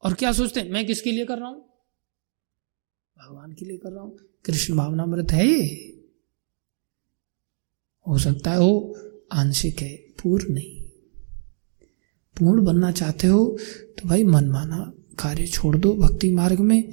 और क्या सोचते हैं मैं किसके लिए कर रहा हूं? भगवान के लिए कर रहा हूं। कृष्ण भावनामृत है ये? हो सकता है वो आंशिक है, पूर्ण नहीं। पूर्ण बनना चाहते हो तो भाई मनमाना कार्य छोड़ दो भक्ति मार्ग में,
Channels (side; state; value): left; silent; digital silence